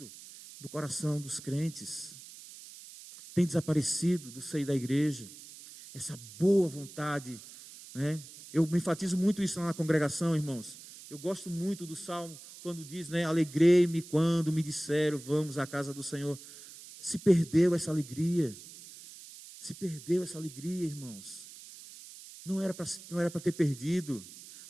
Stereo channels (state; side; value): noise; right; hiss, 16 dB below the sound